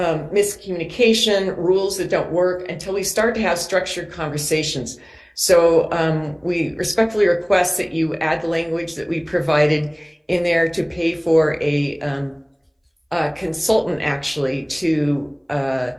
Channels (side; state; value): both; identical; correlation 1.00